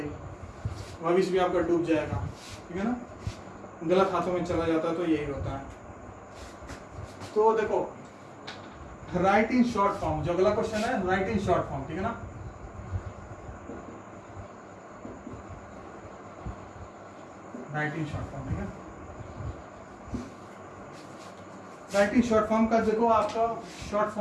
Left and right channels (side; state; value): both; identical; correlation 1.00